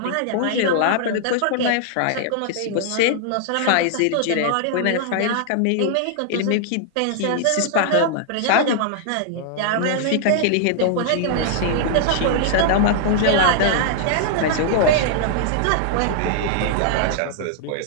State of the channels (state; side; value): different; both; correlation -0.01